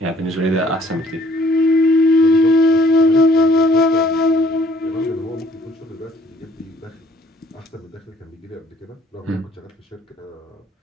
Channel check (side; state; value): both; normal; correlation 0.60